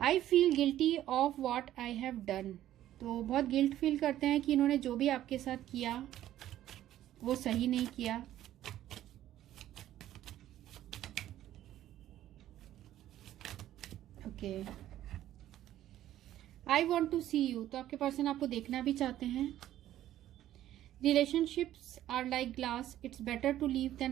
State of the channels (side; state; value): left; quieter; 12.8 dB